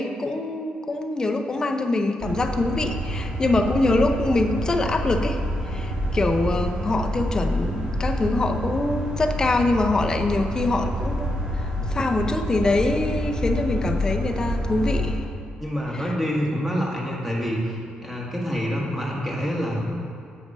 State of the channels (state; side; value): normal; both; correlation 0.85